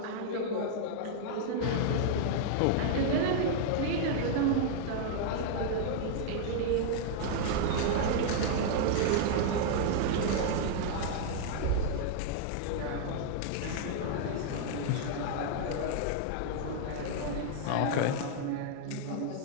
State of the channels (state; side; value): different; both; correlation -0.01